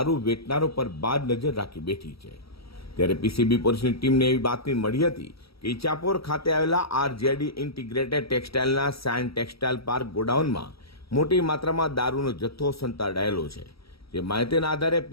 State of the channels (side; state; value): right; late; 0.76 ms